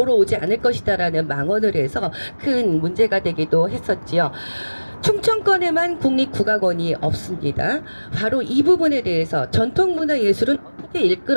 오지 않을 것이다라는 망언을 해서 큰 문제가 되기도 했었지요. 충청권에만 국립국악원이 없습니다. 바로 이 부분에 대해서 전통문화예술은 어떻게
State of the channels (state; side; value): inverted; both; correlation -1.00